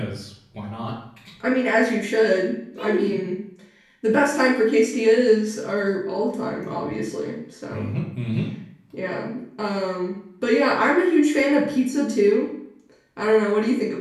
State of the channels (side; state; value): both; identical; correlation 1.00